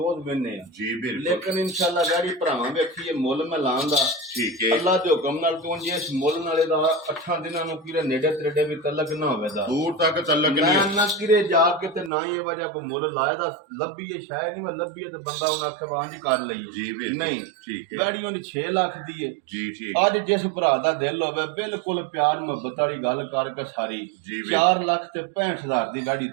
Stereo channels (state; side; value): drops out; left; at 12.1 s